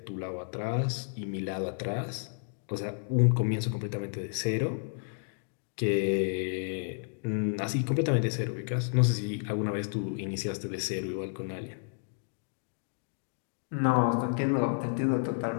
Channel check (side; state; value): right; silent; digital silence